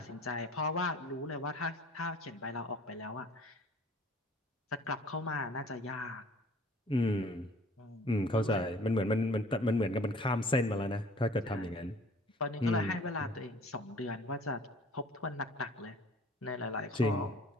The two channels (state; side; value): normal; both; correlation 0.51